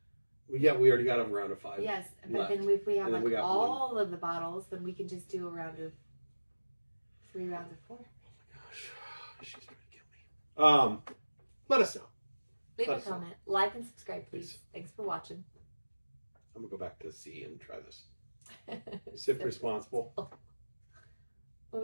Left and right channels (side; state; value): both; inverted; correlation -1.00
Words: Well, yeah, we already got a round of 5. Yes, but left. then if we have And then we got all of the bottles, then we can just do a round of 3 rounds of 4. Oh my gosh, she's trying to kill me. Let us know. Leave Let a us know. comment, like and subscribe, please. Please. Thanks for watching. I'm gonna go back to C and try this. Sip responsible. What